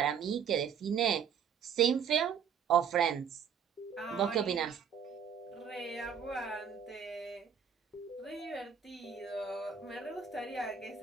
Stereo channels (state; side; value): quieter; left; 7.6 dB